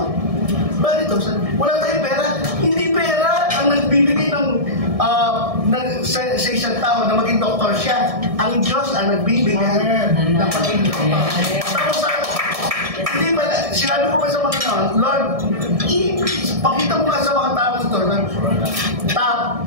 Bakit ito? Wala tayong pera. Hindi pera ang nagbibigay sa isang tao na maging doktor siya. Ang Diyos ang nagbibigay ng pagiging doktor. Tapos hindi ba, sinabi ko ba sa mga Lord, pakita mo nga sa mga tao ito na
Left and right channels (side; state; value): left; late; 1.6 ms